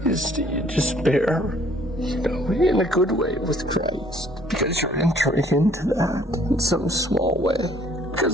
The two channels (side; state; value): both; normal; correlation 0.60